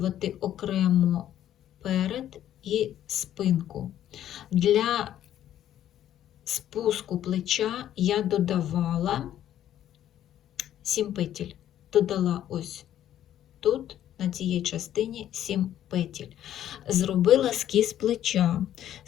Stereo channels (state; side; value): quieter; right; 11.5 dB